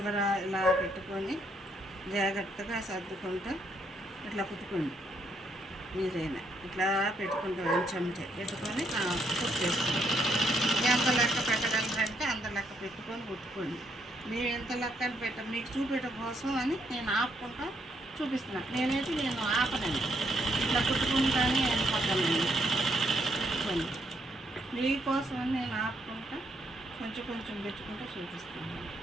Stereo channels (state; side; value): normal; both; correlation 0.73